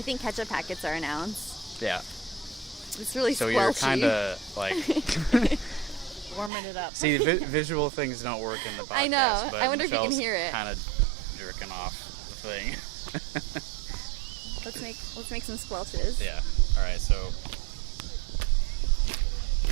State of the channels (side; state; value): left; drops out; at 6.5 s